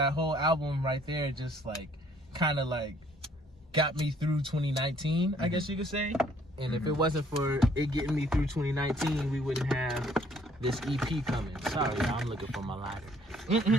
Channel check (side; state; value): both; normal; correlation 0.62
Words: whole album right there just like kind of like got me through 2019, I guess you could say. And if it wasn't for it getting me through 2019, we wouldn't have this EP coming. Sorry, y'all, I'm looking for my lighter.